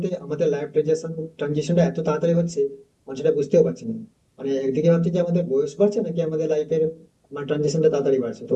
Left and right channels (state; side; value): identical; both; correlation 1.00